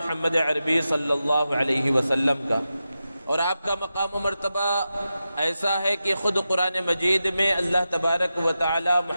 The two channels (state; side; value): inverted; both; correlation -0.91